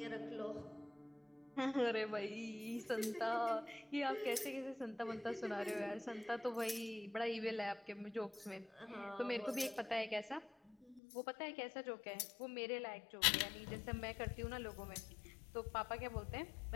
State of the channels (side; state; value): right; drops out; at 11.0 s